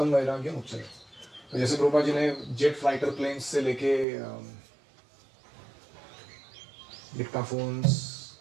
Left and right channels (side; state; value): left; drops out; at 4.0 s